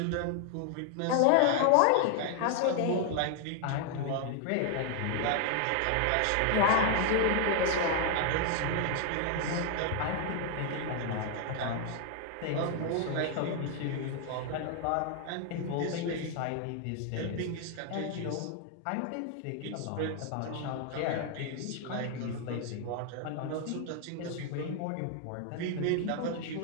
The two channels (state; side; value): different; both; correlation 0.00